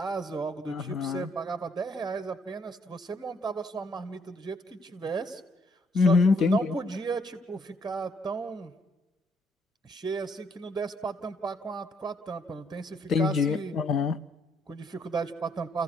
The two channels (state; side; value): normal; both; correlation 0.70